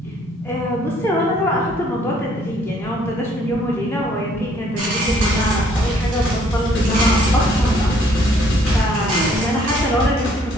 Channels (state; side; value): normal; both; correlation 0.63